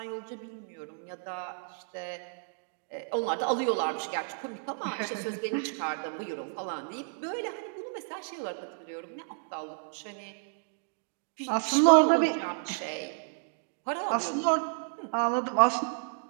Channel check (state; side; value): silent; left; digital silence